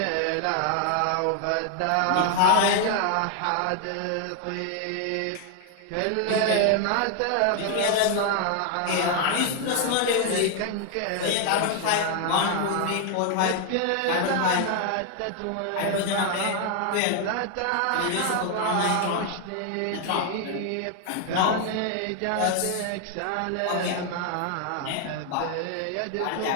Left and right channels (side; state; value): both; different; correlation 0.00